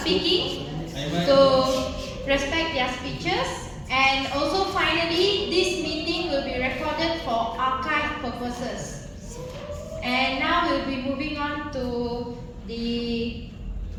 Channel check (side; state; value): both; identical; correlation 1.00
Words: so respect their speeches. And also finally, this meeting will be recorded for archive purposes. And now we'll be moving on to the